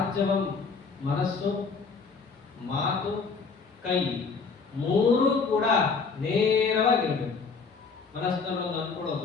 ಮನಸ್ಸು, ಮಾತು, ಕೈ 3 ಕೂಡ ನೇರವಾಗಿರ್ಬೇಕು. ಮನಸ್ಸಿನಲ್ಲೊಂದು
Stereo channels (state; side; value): quieter; right; 5.0 dB